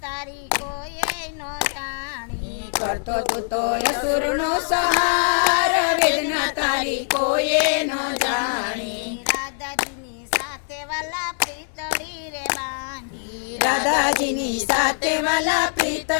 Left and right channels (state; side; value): silent; right; 63 dB below the other